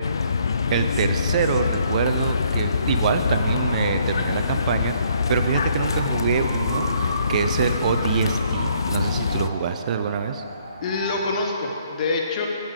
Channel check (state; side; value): inverted; both; correlation -0.66